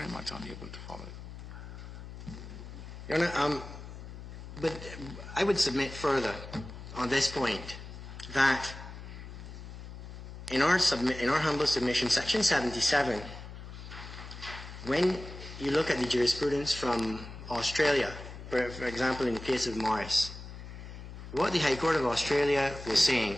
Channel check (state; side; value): noise; left; hum, 12 dB below the sound